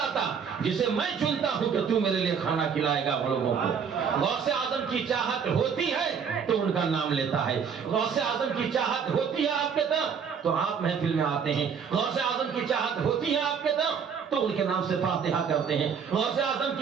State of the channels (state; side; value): quieter; left; 6.7 dB